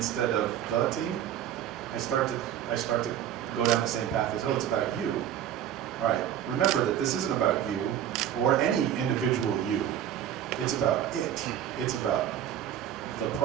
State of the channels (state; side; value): quieter; left; 10.6 dB